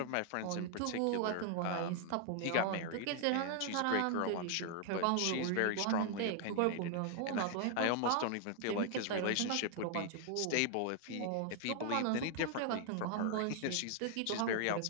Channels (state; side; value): different; both; correlation 0.00